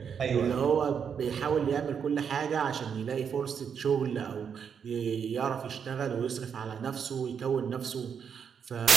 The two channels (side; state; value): left; quieter; 7.2 dB